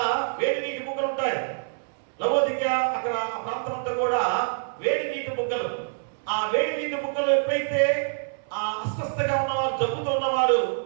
వేడి నీటి బుగ్గలు ఉంటాయి. లవోదికీయ అక్కడ ఆ ప్రాంతం అంతా కూడా వేడి నీటి బుగ్గలు. ఆ వేడి నీటి బుగ్గలు ఎప్పుడైతే ఆ అస్వస్థగా ఉన్నవారు, జబ్బుతో ఉన్నవారు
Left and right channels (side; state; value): left; silent; 61 dB below the other